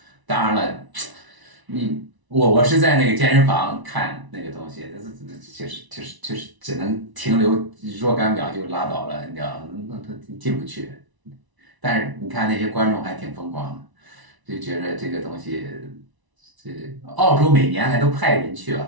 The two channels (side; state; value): left; late; 1.0 ms